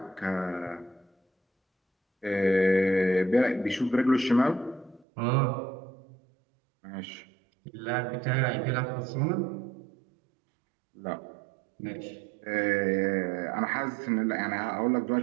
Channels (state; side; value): drops out; left; at 5.1 s